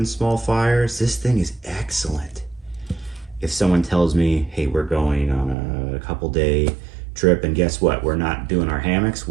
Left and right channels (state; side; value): drops out; left; at 5.6 s